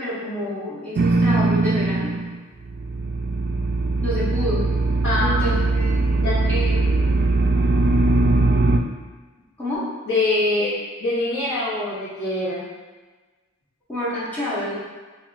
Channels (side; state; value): both; normal; correlation 0.70